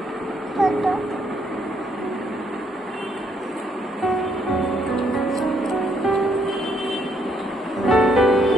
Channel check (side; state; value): both; normal; correlation 0.71